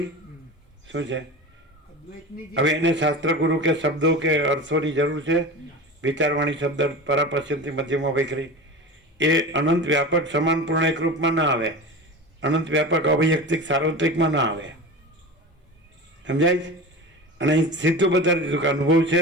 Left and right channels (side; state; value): both; normal; correlation 0.30